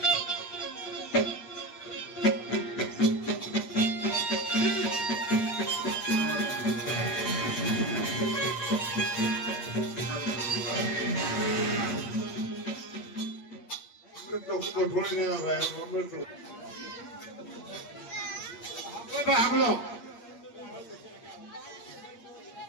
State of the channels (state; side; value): late; right; 8.5 ms